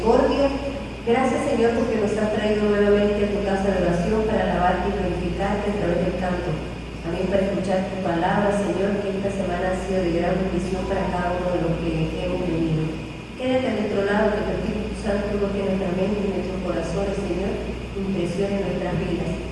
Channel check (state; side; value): identical; both; correlation 1.00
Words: Gracias, Señor, porque nos has traído nuevamente a tu casa de oración para alabarte y glorificarte a través del canto. También para escuchar tu palabra, Señor, que esta semana ha sido de gran bendición para cada uno de los que hemos venido. Quédate a nuestro lado, que tu Espíritu Santo toque nuestra mente y nuestros corazones, Señor, impresione nuestras vidas.